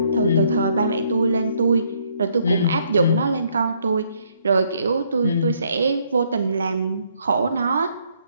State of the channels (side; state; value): both; inverted; correlation -0.69